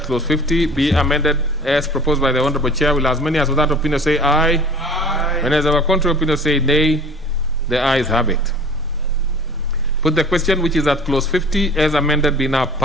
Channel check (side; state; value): both; normal; correlation 0.44